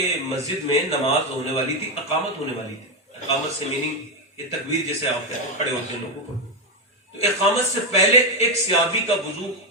مسجد میں نماز ہونے والی تھی, اقامت ہونے والی تھی. اقامت سے میننگ یہ تکبیر جیسے آپ کہتے ہیں, کھڑے ہوتے ہیں لوگوں کو. تو اقامت سے پہلے ایک صحابی کا وضو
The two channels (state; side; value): normal; both; correlation 0.06